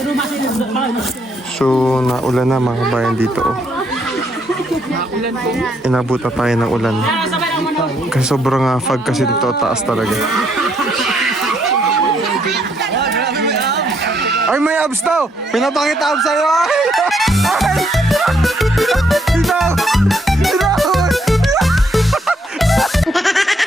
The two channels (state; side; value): normal; both; correlation 0.72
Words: So, naulan na mga kabayan dito. Oh. Inabot na tayo ng ulan. Kasi sobrang fog kasi dito, taas talaga. Ay, may abs daw! Pinapakita abs sa'yo! Ay! Ay!